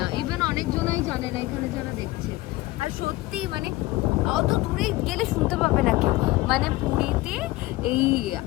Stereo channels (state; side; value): quieter; right; 19.1 dB